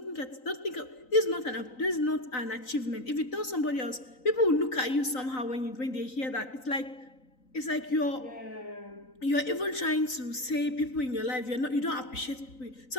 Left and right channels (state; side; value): late; right; 3.9 ms